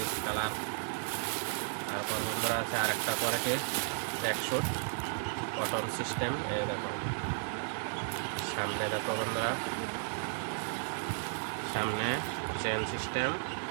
কালার। তারপর বন্ধুরা আছে আরেকটা কোয়ালিটির ট্র্যাকস্যুট কটন সিস্টেম। এই দেখো সামনে দেখো বন্ধুরা, সামনে চেন সিস্টেম।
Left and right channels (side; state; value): left; silent; digital silence